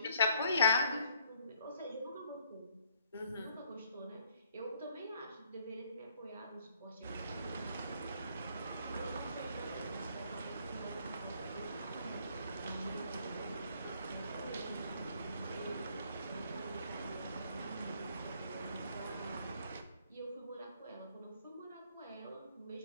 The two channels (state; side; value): inverted; both; correlation -0.65